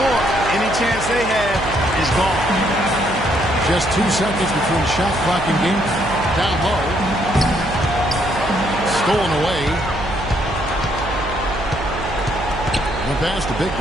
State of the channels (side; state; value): right; noise; hum, 9 dB below the sound